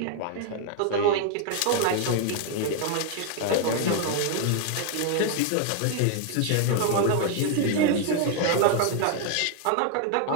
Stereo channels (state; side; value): different; both; correlation 0.00